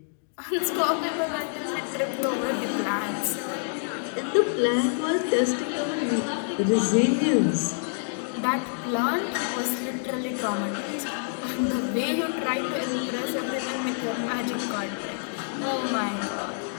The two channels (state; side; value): silent; right; digital silence